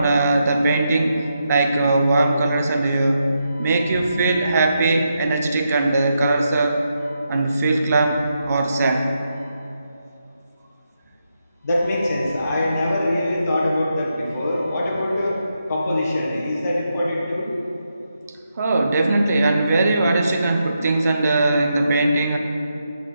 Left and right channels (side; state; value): both; inverted; correlation -0.83